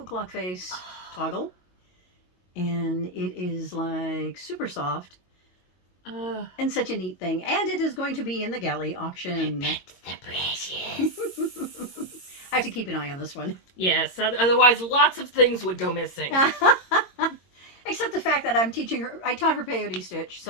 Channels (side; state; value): right; late; 22 ms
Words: clock face toggle. And it is like super soft. And such a neat thing. And it is going to be in the galley auction. The precious. I have to keep an eye on this one. Yes, otherwise lots of things would go missing. Except the fact that I taught her peyote stitch,